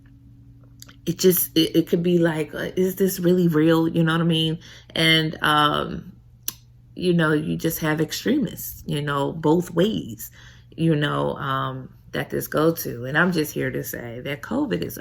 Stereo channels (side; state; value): both; identical; correlation 1.00